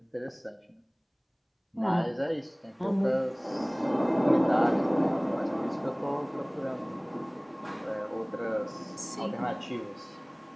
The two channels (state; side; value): identical; both; correlation 1.00